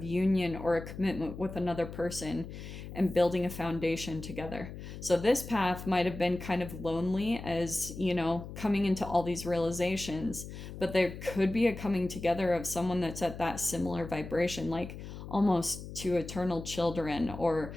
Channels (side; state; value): left; noise; hum, 11 dB below the sound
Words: union or a commitment with another person and building a foundation together. So this path might have been kind of lonely, as, you know, coming into all these realizations, but there could be a coming together of someone that's at that similar vibration, like almost to eternal children. Or